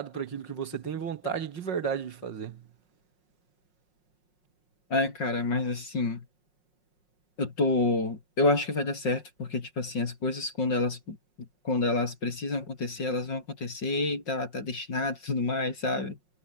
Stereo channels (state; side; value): late; right; 5.5 ms